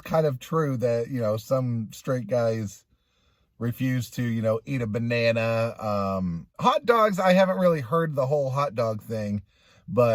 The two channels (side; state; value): both; identical; correlation 1.00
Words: of true that, you know, some straight guys refuse to, you know, eat a banana. Hot dogs, I haven't really heard the whole hot dog thing,